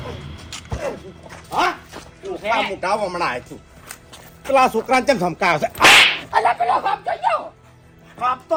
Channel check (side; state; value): both; identical; correlation 1.00